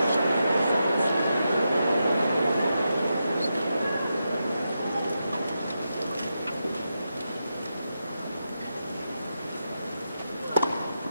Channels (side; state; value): both; inverted; correlation -0.87